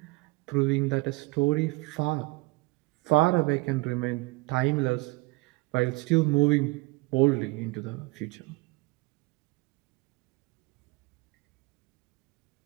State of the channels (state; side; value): quieter; left; 24.0 dB